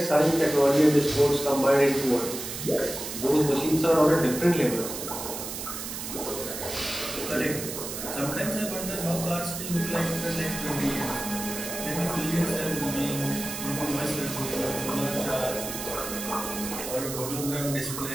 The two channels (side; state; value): right; noise; hiss, 7 dB below the sound